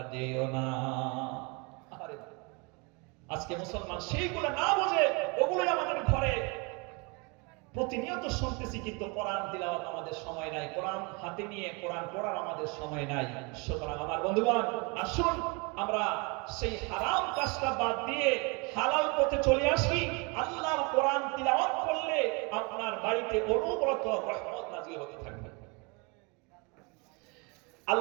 যেও না। আরে আজকে মুসলমান সেইগুলো না বুঝে ওগুলোই আমাদের ঘরে প্রতিনিয়ত শুনতেছি, কিন্তু কোরআন তিলাওয়াত আমাদের সময় নাই, কোরআন হাতে নিয়ে কোরআন পড়ার আমাদের সময় নাই। সুতরাং আমার বন্ধুগণ, আসুন আমরা সেই হারাম কাজটা বাদ দিয়ে হালাল পথে চলে আসি। আল্লাহর কোরআন তিলাওয়াত করলে আপনার বাড়িতে অনবরত রহমত নাযিল হতে থাকবে।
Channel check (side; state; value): left; quieter; 30.3 dB